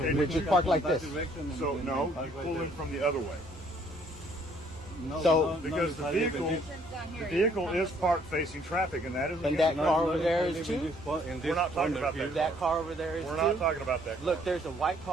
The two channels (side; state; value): both; normal; correlation 0.63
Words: we but just you park Come like that this. direction and So then no, park you right pull there. in from the other way. No, So- no, Because the I live in vehicle, this- the vehicle is parked facing traffic, and that is And against that the car law. over there I is live in too? this spot- in We're this not talking corner about here. that. That car over there is We're too. not talking about that car. Look, there's a white